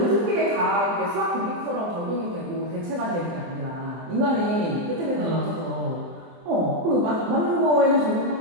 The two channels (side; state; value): left; late; 24 ms